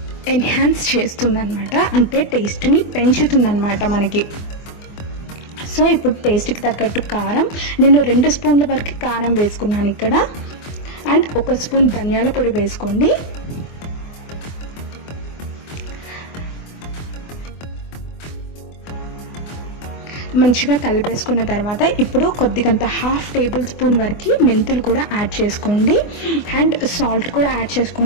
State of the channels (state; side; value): late; right; 24 ms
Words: ఎన్హాన్స్ చేస్తుందన్నమాట, అంటే టేస్ట్ని పెంచుతుందన్నమాట మనకి. సో ఇప్పుడు టేస్ట్కి తగ్గట్టు కారం, నేను 2 స్పూన్ల వరకు కారం వేసుకున్నాను ఇక్కడ. అండ్ 1 స్పూన్ ధనియాల పొడి వేసుకోండి. మంచిగా కలిపేసుకున్న తర్వాత ఇప్పుడు కొద్దిగంత 1/2 టేబుల్ స్పూన్ వరకు మెంతులు కూడా యాడ్ చేసుకోండి. అండ్ సాల్ట్ కూడా యాడ్